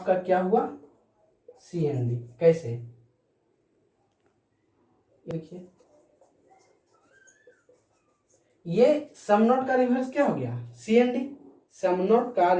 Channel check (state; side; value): identical; both; correlation 1.00